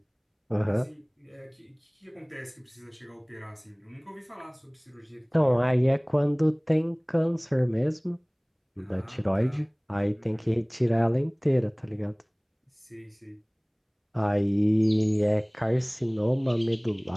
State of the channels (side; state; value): both; identical; correlation 1.00